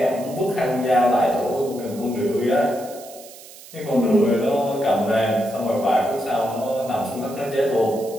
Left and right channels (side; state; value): right; noise; hiss, 18 dB below the sound